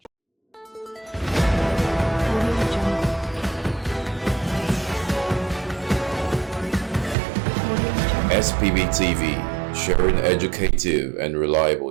SPB TV, sharing educative and reliable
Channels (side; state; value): left; drops out; at 7.2 s